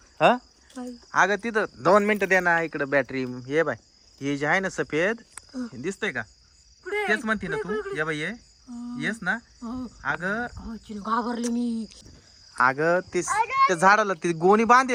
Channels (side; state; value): both; identical; correlation 1.00